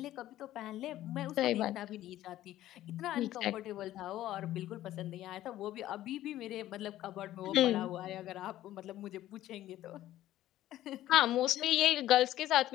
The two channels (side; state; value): right; quieter; 14.0 dB